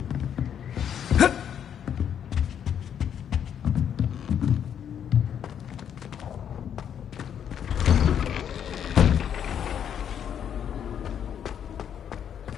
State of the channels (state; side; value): quieter; right; 8.8 dB